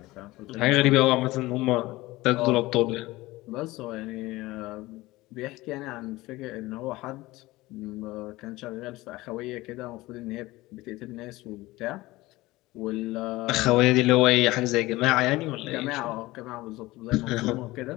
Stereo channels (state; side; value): quieter; right; 19.3 dB